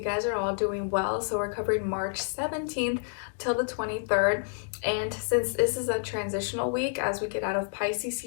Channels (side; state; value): right; silent; digital silence